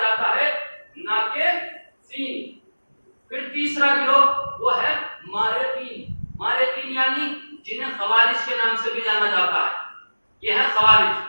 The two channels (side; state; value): both; inverted; correlation -1.00